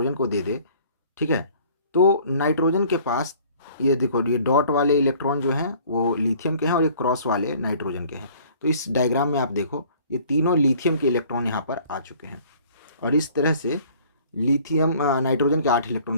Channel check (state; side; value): inverted; both; correlation -0.53